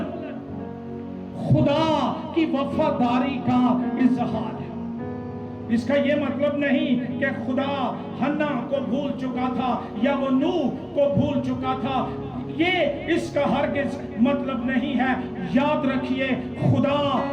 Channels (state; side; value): identical; both; correlation 1.00